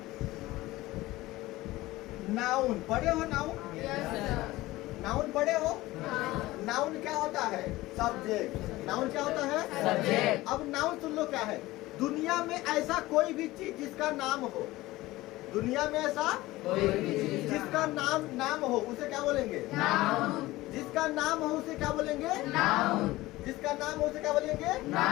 नाउन। पढ़े हो नाउन? नाउन पढ़े हो? नाउन क्या होता है? सब्जेक्ट। नाउन क्या होता है? सब्जेक्ट। अब नाउन सुन लो क्या है? दुनिया में ऐसा कोई भी चीज जिसका नाम हो, दुनिया में ऐसा कोई भी चीज जिसका नाम हो उसे क्या बोलेंगे? नाउन। जिसका नाम हो उसे क्या बोलेंगे? नाउन। जिसका नाम हो उसे क्या बोलेंगे?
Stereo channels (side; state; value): right; quieter; 18.4 dB